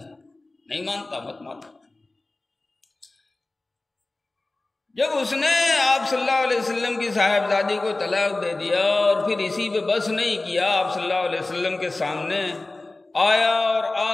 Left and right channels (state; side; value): quieter; right; 3.0 dB